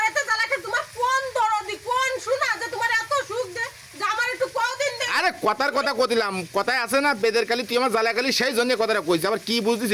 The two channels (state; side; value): identical; both; correlation 1.00